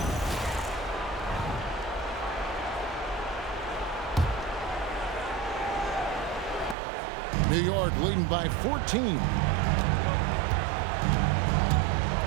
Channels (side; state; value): left; drops out; at 6.8 s